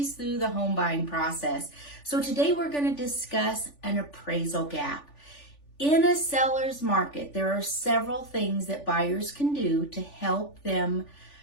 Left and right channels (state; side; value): late; right; 3.4 ms